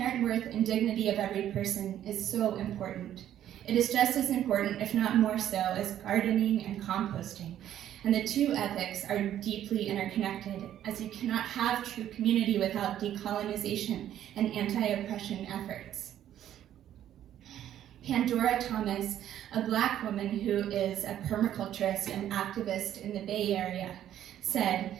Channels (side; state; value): left; quieter; 11.3 dB